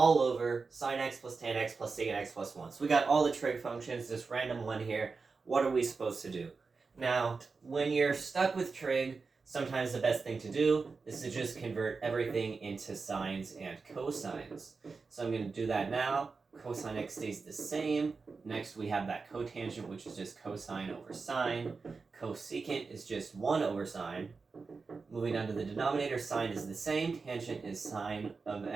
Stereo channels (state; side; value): quieter; left; 4.5 dB